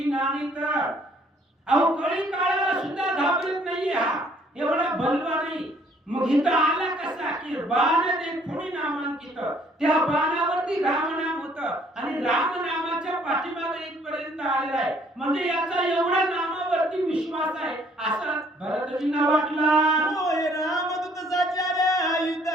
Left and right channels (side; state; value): both; normal; correlation 0.62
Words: नानित. अहो कळी काळाला सुद्धा घाबरत नाही हा, एवढा बलवान नाही. मग इथं आला कसा की बाण देखोनी नामांकित, त्या बाणावरती राम नाम होतं आणि राम नामाच्या पाठीमागे इथपर्यंत आलेला आहे. म्हणजे याचा एवढा नामावरती विश्वास आहे असं भरतजींना वाटला. होय रामदूत साचार युद्ध